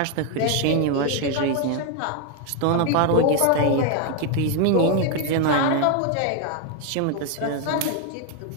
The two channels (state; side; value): different; both; correlation 0.01